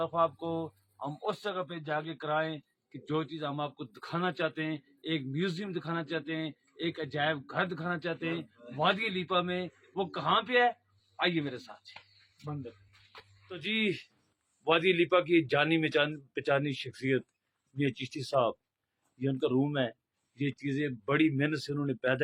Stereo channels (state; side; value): identical; both; correlation 1.00